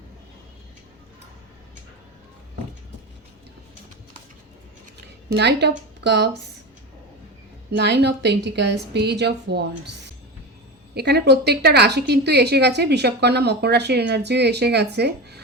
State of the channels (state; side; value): normal; both; correlation 0.23